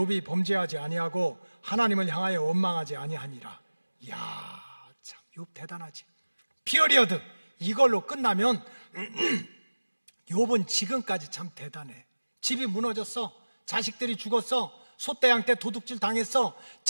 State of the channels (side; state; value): both; inverted; correlation -1.00